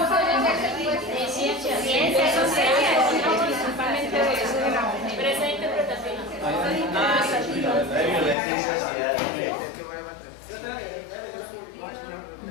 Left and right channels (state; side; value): drops out; right; at 8.3 s